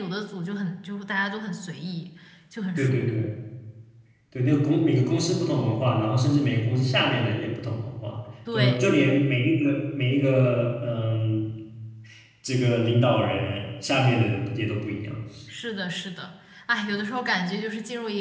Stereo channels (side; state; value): both; identical; correlation 1.00